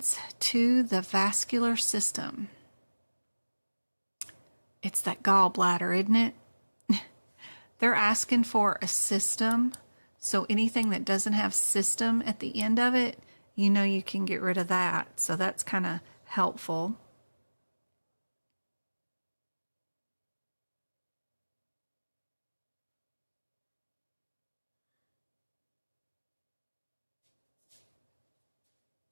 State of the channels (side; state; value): both; inverted; correlation -1.00